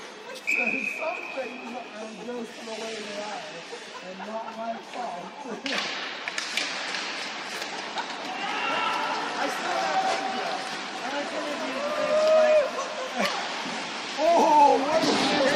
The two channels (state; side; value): identical; both; correlation 1.00